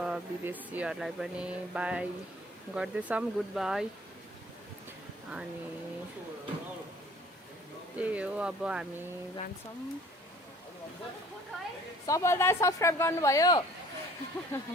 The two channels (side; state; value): both; normal; correlation 0.52